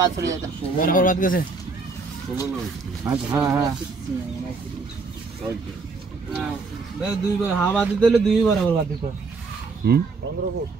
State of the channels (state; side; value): quieter; left; 4.2 dB